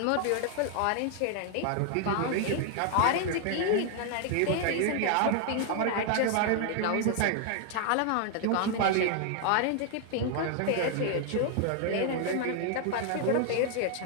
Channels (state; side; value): different; both; correlation 0.00